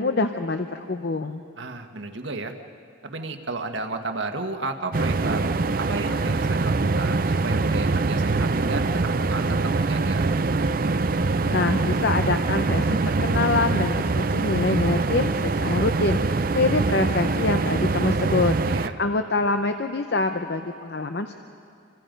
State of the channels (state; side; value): normal; both; correlation 0.35